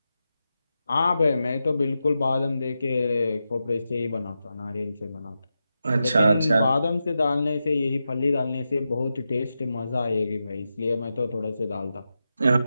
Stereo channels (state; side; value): inverted; both; correlation -0.90